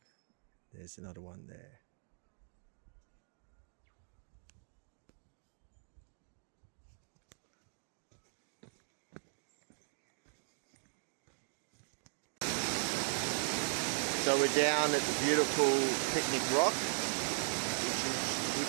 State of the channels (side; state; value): left; silent; digital silence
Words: There's another one there. So we're down at the beautiful Picnic Rock,